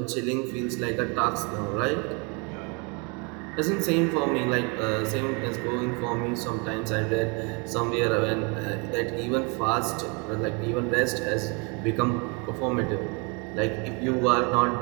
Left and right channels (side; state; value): left; quieter; 32.3 dB